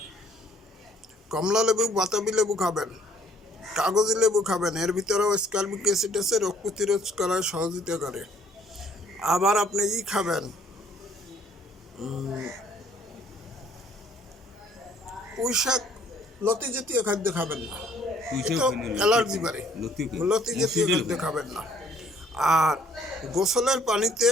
কমলা লেবু, বাতাবি লেবু খাবেন। কাগজি লেবু খাবেন, এর ভিতরেও স্কারবিক অ্যাসিড আছে, রোগ প্রতিরোধ করার সহযোগিতা করে। আবার আপনি খাবেন, পুঁই শাক, লতি জাতীয় খাদ্য খাবেন না, এটা অ্যালার্জি বাড়ে। লতি জাতীয় খাদ্য খাবেন না। আর গোসলের পানিতে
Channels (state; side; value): normal; both; correlation 0.61